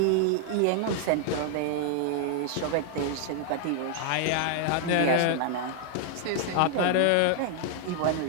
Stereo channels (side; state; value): both; different; correlation 0.00